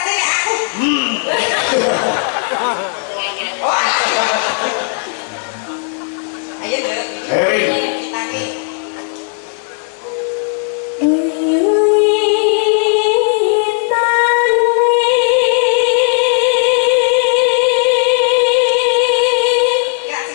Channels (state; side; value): silent; right; 59 dB below the other